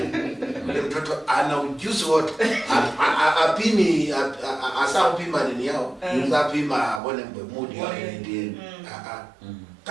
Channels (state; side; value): drops out; left; at 7.0 s